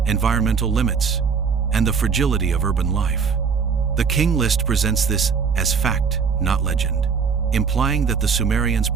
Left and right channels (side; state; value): left; quieter; 6.0 dB